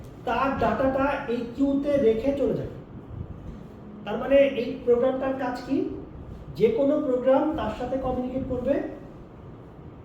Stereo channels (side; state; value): both; identical; correlation 1.00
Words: তার ডাটাটা এই কিউতে রেখে চলে যাবে। তার মানে এই প্রোগ্রামটার কাজ কি? যে কোনো প্রোগ্রাম তার সাথে কমিউনিকেট করবে,